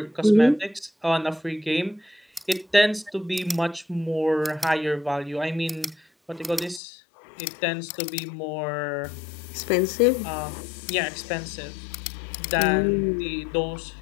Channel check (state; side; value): drops out; right; at 6.8 s